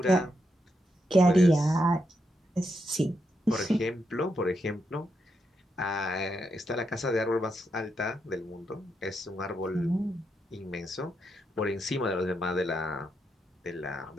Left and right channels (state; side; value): normal; both; correlation 0.82